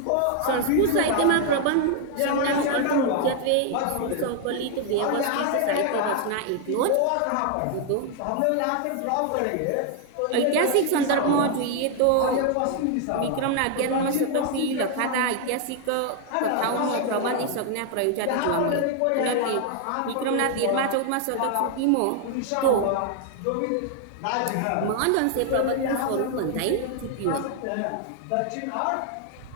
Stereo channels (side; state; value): both; different; correlation 0.00